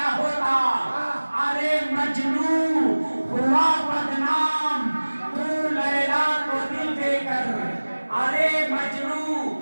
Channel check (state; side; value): inverted; both; correlation -1.00